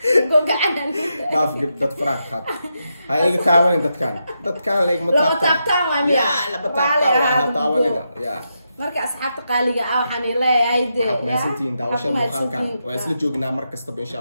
قوق عنا ناف جبت فرح خد هاي تعاون دت كان ليك متابتان وامي يا لا بتابتان تعاون يا marka asxaabta qaaliga ah waxaan leeyahay meesantiin daawashada muuqaalkan waa isla joognaa mar kastaba insha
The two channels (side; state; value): both; inverted; correlation -0.84